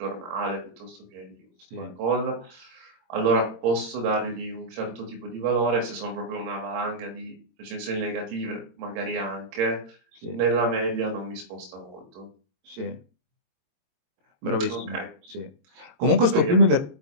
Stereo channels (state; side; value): late; left; 22 ms